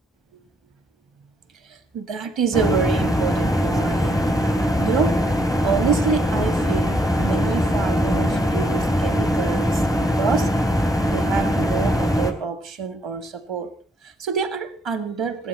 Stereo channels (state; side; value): normal; both; correlation 0.73